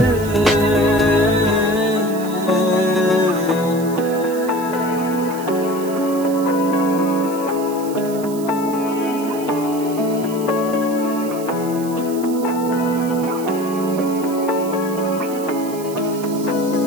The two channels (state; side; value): noise; right; hiss, 16 dB below the sound